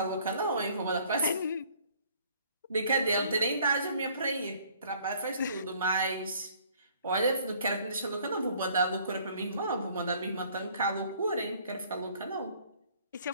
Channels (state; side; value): inverted; both; correlation -0.58